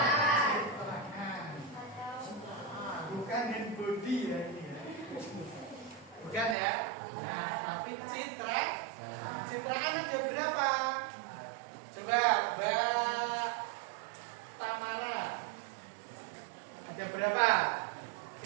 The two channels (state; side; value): drops out; left; at 6.6 s